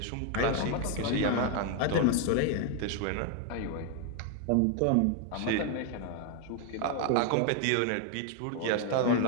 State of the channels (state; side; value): different; both; correlation 0.00